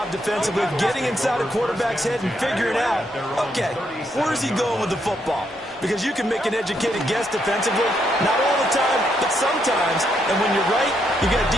defensively of getting inside a quarterback's head and figuring out, okay, where's he going with the football? Because you can make an educated guess defensively, not all the time, but sometimes. And when you're right, you get a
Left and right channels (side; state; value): both; normal; correlation 0.77